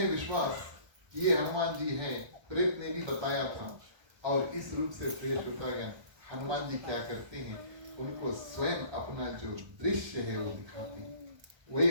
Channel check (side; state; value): left; late; 1.2 ms